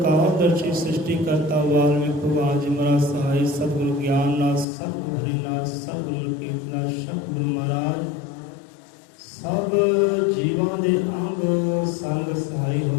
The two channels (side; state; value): right; drops out; at 4.7 s